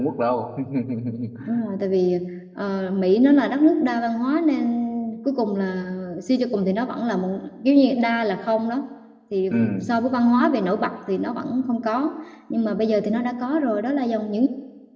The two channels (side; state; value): both; identical; correlation 1.00